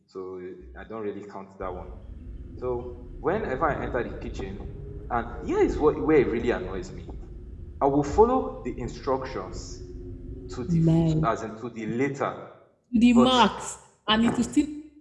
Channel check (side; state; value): both; identical; correlation 1.00